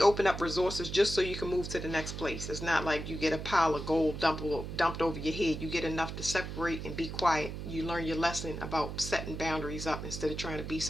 open up resources just so you can move to the next place. It's not like you get a pile of gold dumped over your head. You get enough to separate and be quiet. You learn your lesson about setting boundaries up instead of trying to be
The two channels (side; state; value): right; noise; hum, 7 dB below the sound